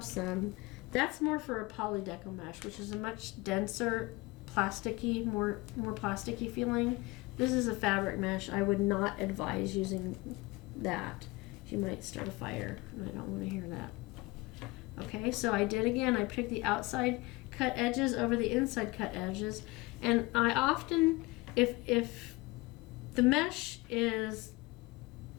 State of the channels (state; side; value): quieter; right; 23.1 dB